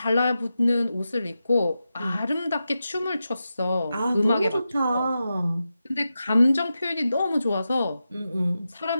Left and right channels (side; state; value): both; inverted; correlation -0.91